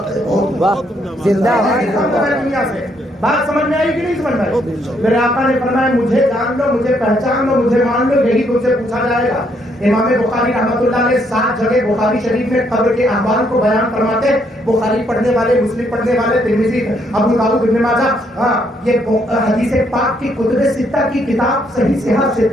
واہ زندہ دنیا سے بات سمجھ میں آئی کہ نہیں سمجھ میں آئی؟ میرے آقا نے فرمایا مجھے جان لو، مجھے پہچان لو، مجھے مان لو، یہی تم سے پوچھا جائے گا۔ امام بخاری رحمۃ اللہ نے 7 جگہ بخاری شریف میں قبر کے احوال کو بیان فرماتے ہیں۔ بخاری پڑھنے والے، مسلم پڑھنے والے، ترمذی، ابو داؤد، ابن ماجہ، یہ حدیث پاک کی کتب ستہ کی کتاب صحیح صحیح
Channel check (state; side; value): normal; both; correlation 0.72